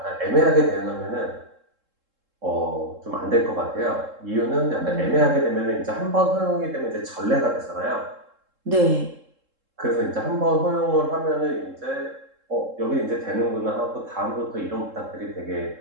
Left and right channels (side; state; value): left; late; 3.7 ms